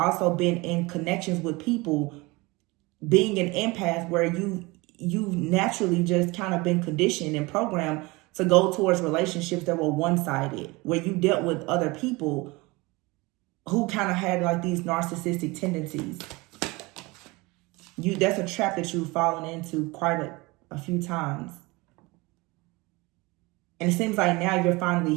been in connections with people, being an empath, where you've naturally just kind of been conditioned and programmed to go towards relationships that were one-sided, where you dealt with other people who kind of had like these narcissistic tendencies. That's a trap that you've fallen into quite a few times. And it seems like now you're finally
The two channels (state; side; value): quieter; left; 23.8 dB